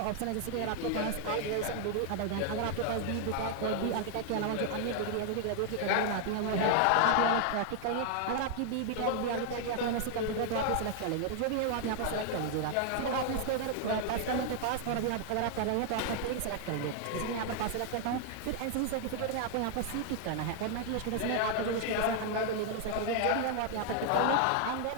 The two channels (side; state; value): both; different; correlation 0.00